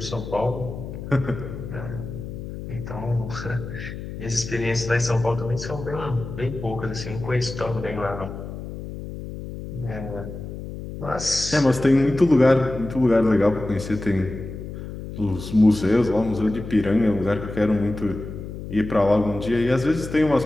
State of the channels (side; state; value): left; noise; hum, 9 dB below the sound